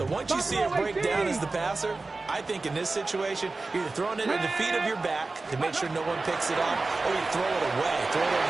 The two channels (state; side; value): quieter; left; 3.5 dB